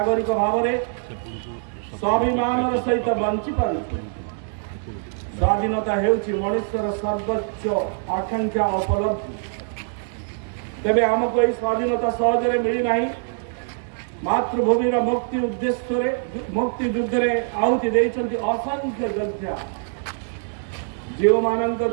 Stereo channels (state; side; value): silent; left; 62 dB below the other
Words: भाव में स्वाभिमान सहित बंची पार। स्वाधीनता हेउछि मनुष्यर सर्वोच्च आकांक्षा उपलब्धि। तेबे आमको यही स्वाधीनता सहजरे मिली नहीं। मातृभूमि मुक्ति उद्देश्य मुक्ति युद्ध में आहुति देइछन्ति असंख्य योद्धा। जो मानक